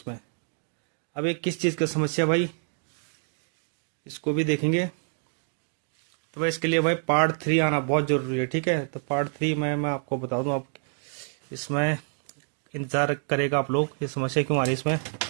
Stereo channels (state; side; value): silent; left; 60 dB below the other